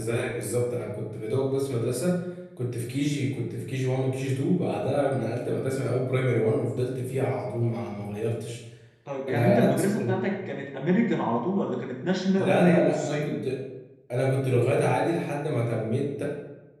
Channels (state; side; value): identical; both; correlation 1.00